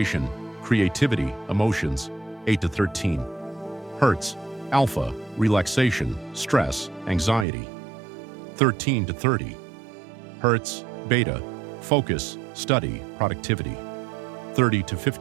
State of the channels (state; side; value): drops out; left; at 7.5 s